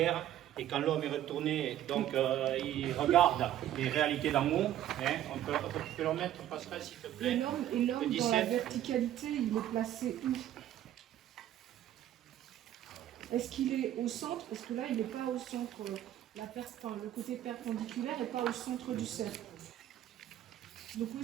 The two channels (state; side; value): quieter; left; 12.2 dB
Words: Et quand l'homme est retourné, donc il regarde les réalités d'amour. Hein, on peut le remettre, Pascal, s'il te plaît. Et l'homme dans la verticalité, il est placé où? Est-ce qu'il est au centre? Parce que là, il n'est pas au centre. Le côté perpendiculaire n'est pas au centre du cercle. Donc où